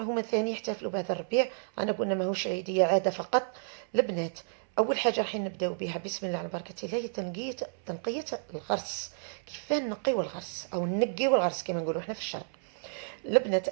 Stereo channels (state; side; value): silent; left; 57 dB below the other